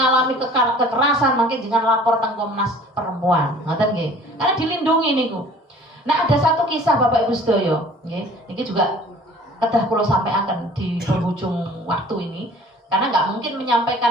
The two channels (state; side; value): normal; both; correlation 0.49